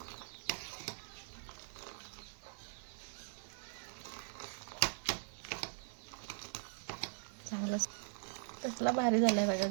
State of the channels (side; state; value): left; silent; 50 dB below the other